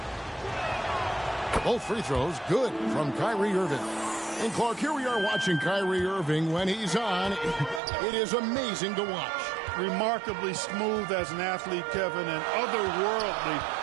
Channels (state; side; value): drops out; left; at 7.8 s